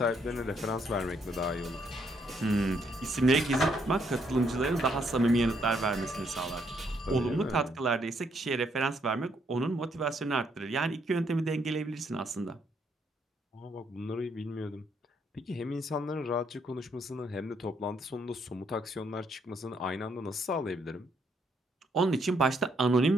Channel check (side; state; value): both; normal; correlation 0.72